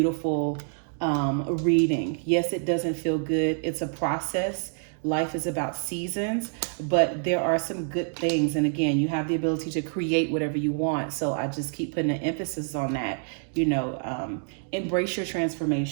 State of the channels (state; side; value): silent; left; 60 dB below the other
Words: reading. Yes, it doesn't feel good. It's a process. Life is about seasons, but there are some good things. And again, you have the ability to create whatever you want. So I just keep putting an emphasis on that. You know, embrace your